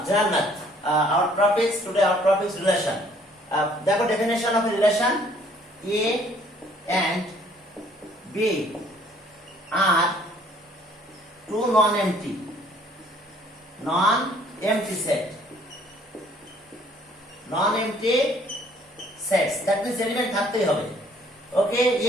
General Math. Our topic is relation. The definition of a relation: A and B are two non-empty set. Non-empty sets. That means element থাকতেই হবে. Okay,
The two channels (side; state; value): both; normal; correlation 0.60